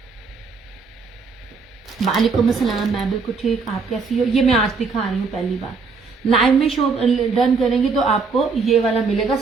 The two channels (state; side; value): quieter; left; 4.7 dB